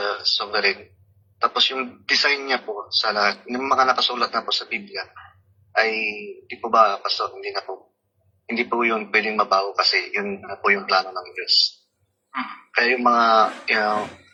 sovereign. Tapos yung design niya po sa lahat, yung mga nakasulat na po sa Biblia, ay di po ba, Pastor, hindi po yun pwedeng mabago kasi yun na po yung plano ng Diyos. Kaya yung mga,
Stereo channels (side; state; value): both; identical; correlation 1.00